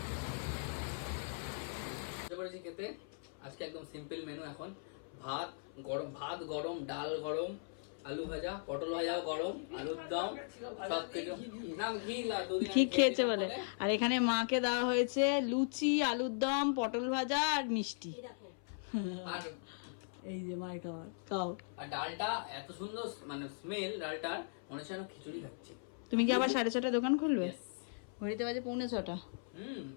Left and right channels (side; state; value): right; silent; 52 dB below the other